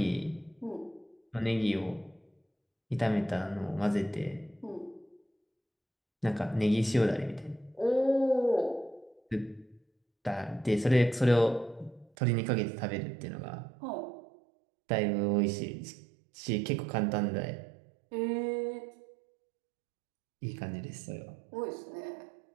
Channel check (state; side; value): drops out; left; at 12.1 s